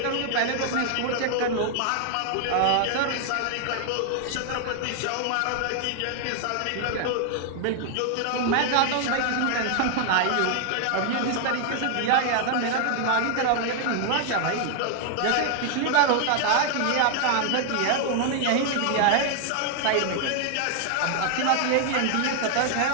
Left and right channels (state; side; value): different; both; correlation 0.00